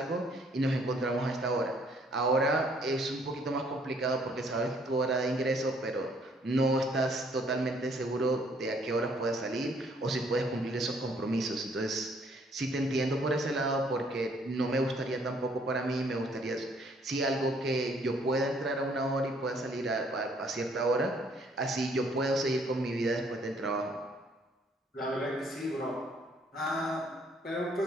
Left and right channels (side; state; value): both; normal; correlation 0.64